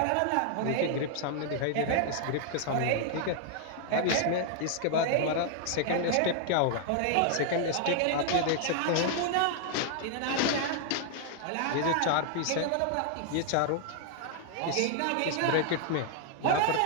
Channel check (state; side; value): different; both; correlation 0.00